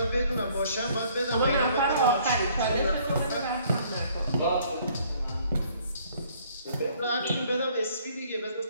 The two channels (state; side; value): inverted; both; correlation -0.61